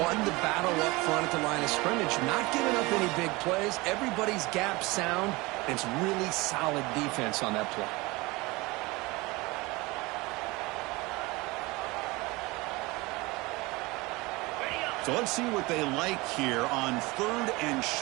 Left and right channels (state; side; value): quieter; left; 23.1 dB